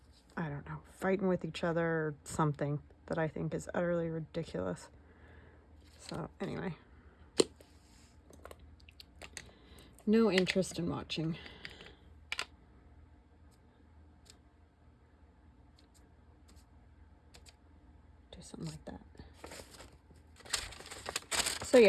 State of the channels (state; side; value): identical; both; correlation 1.00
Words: I don't know, fighting with each other or something that I think is utterly ridiculous. So, anyway. No interest in watching. Do something like that. So